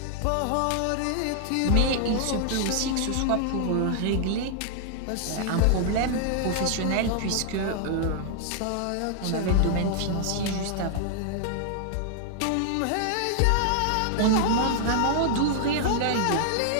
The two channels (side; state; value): both; different; correlation -0.01